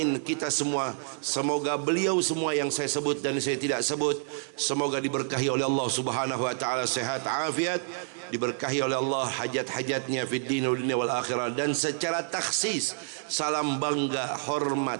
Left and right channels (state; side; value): silent; left; digital silence